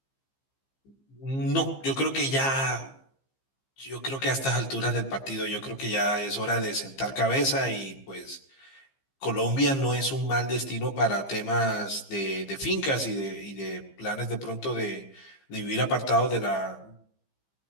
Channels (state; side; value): late; right; 15 ms